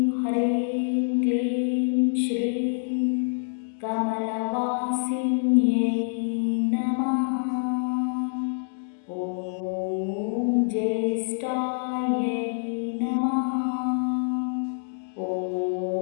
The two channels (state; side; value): silent; right; digital silence